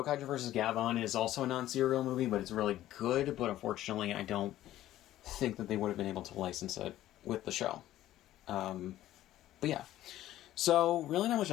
vs. Gabon is also a non-serial movie, but it's really good. But unfortunately, I don't think that they would have been able to license it with the show. But yeah. So, really not much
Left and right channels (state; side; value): quieter; right; 13.9 dB